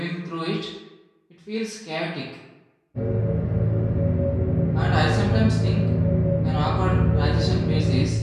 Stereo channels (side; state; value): both; identical; correlation 1.00